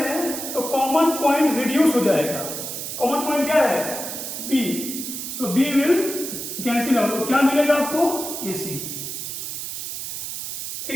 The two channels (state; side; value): noise; right; hiss, 6 dB below the sound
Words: तो कॉमन पॉइंट रिड्यूस हो जाएगा, कॉमन पॉइंट क्या है B, so B will cancel out, तो क्या मिलेगा आपको AC,